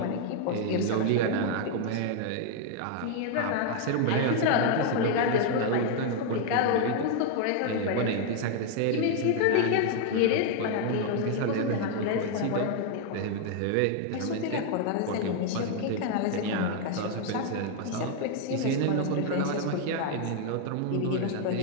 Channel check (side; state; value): both; different; correlation 0.00